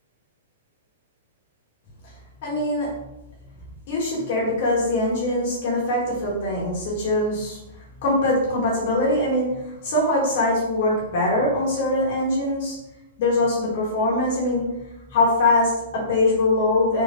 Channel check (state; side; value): inverted; both; correlation -0.33